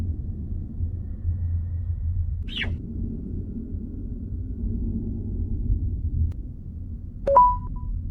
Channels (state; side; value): identical; both; correlation 1.00